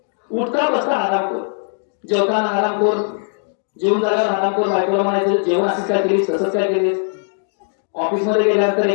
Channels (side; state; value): right; silent; 66 dB below the other